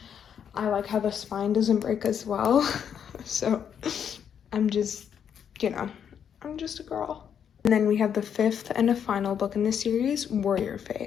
I like how the spine doesn't break as well. So I'm just, you know, I'm just a girl. And then we have the 5th and a final book in this series, Warrior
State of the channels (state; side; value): quieter; right; 8.2 dB